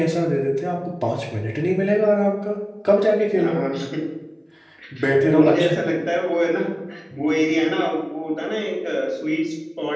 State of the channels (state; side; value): identical; both; correlation 1.00